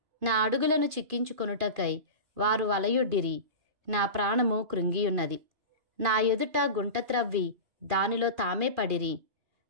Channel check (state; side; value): late; left; 2.5 ms